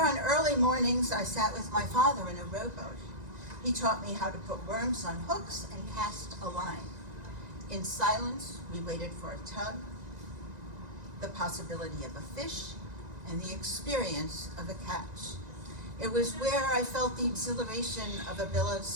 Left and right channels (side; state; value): left; late; 1.9 ms